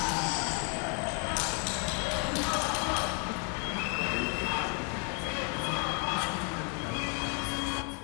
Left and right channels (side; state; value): right; quieter; 36.1 dB